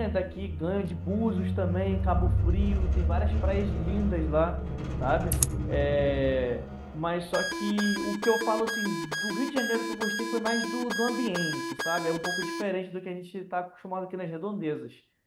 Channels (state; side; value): identical; both; correlation 1.00